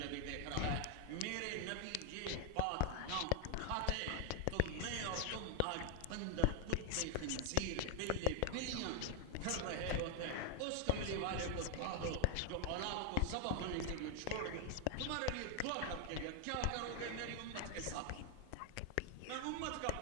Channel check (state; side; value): different; both; correlation 0.00